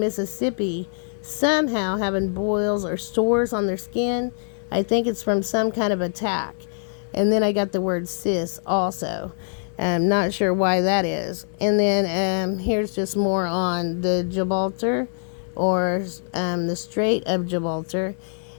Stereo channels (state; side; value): silent; right; digital silence